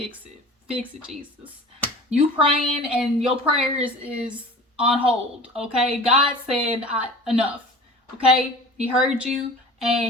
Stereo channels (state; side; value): normal; both; correlation 0.40